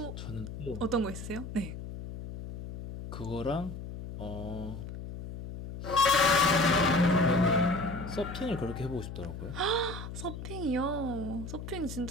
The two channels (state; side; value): noise; left; hum, 9 dB below the sound